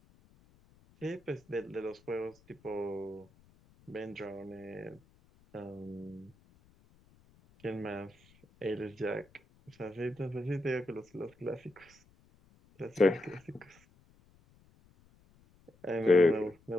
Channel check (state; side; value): noise; left; rumble, 29 dB below the sound